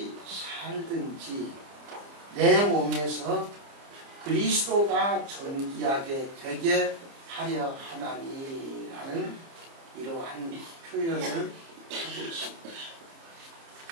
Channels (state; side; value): late; left; 30 ms